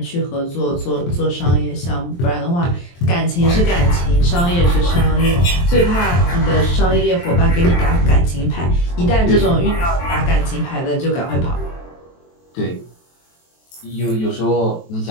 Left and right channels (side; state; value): right; late; 23 ms